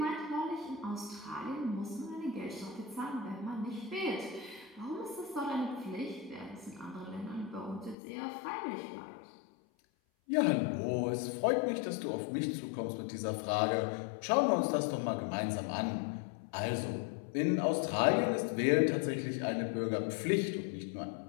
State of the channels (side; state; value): right; drops out; at 8.0 s